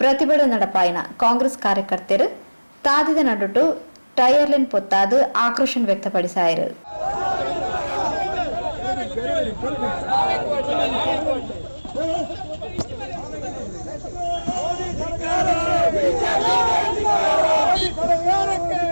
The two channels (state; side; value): inverted; both; correlation -1.00